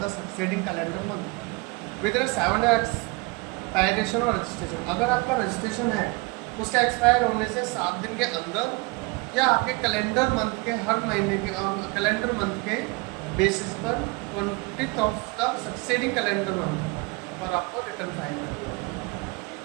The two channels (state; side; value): quieter; left; 26.5 dB